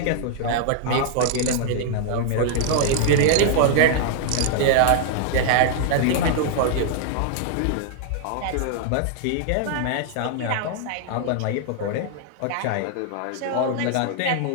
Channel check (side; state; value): both; different; correlation -0.01